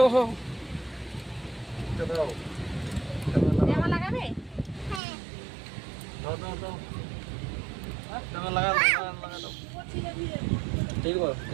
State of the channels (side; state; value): left; drops out; at 5.0 s